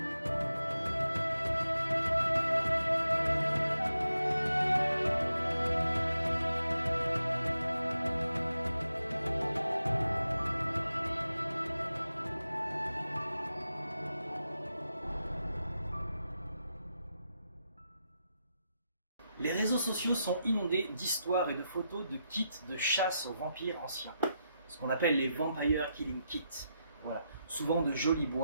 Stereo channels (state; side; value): inverted; both; correlation -0.85